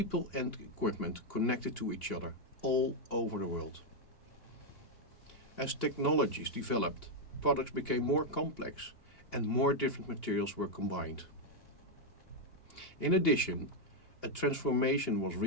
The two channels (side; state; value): right; late; 2.8 ms